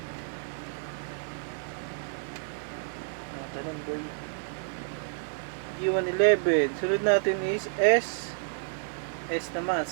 Tanong boy. G111. Sunod natin is S. S naman,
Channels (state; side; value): silent; left; digital silence